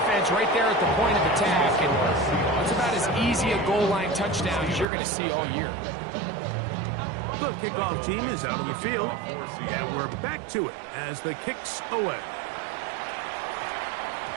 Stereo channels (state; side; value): drops out; left; at 4.9 s